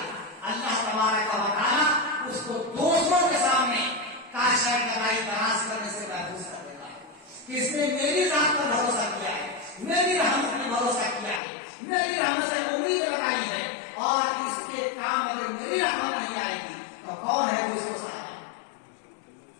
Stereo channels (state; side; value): drops out; right; at 11.4 s